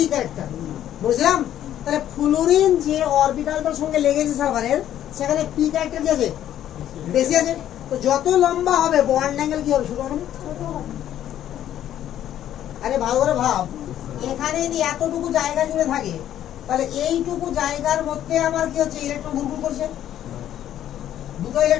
ক্যারেক্টার, বুঝলাম? তাহলে ফ্লুরিন যে অরবিটালটার সঙ্গে লেগেছে সালফারের, সেখানে পি ক্যারেক্টার কি আছে? বেশি আছে। তো যত লম্বা হবে বন্ড অ্যাঙ্গেল কি হবে? ছোট হবে। আরে ভালো করে ভাব, এখানে যদি এতটুকু জায়গা জুড়ে থাকে তাহলে এইটুকু জায়গার মধ্যে আমার কি হচ্ছে? ইলেকট্রন ঘুরঘুর করছে, দুটো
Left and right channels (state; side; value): quieter; right; 11.4 dB